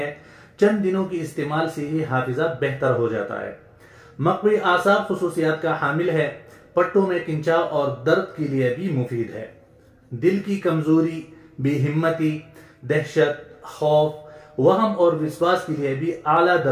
चंद दिनों की इस्तेमाल से ही हाफिजा बेहतर हो जाता है। मकवी आसाब खुसूसियात का हामिल है। पट्टों में किंचाव और दर्द के लिए भी मुफीद है। दिल की कमजोरी, बेहिम्मती, दहशत, खौफ, वहम और विश्वास के लिए भी आला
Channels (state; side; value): identical; both; correlation 1.00